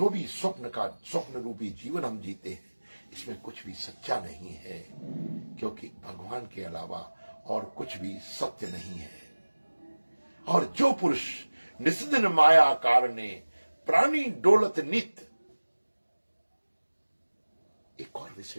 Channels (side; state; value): both; inverted; correlation -1.00